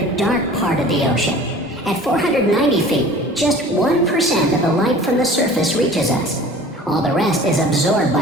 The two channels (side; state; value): both; normal; correlation 0.44